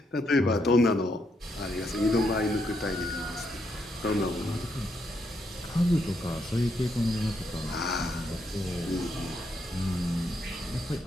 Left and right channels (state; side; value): normal; both; correlation 0.78